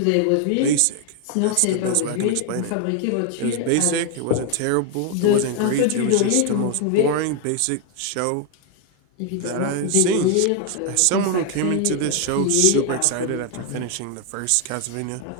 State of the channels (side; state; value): both; different; correlation 0.01